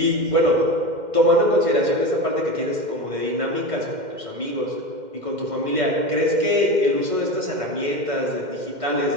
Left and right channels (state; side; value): late; left; 2.1 ms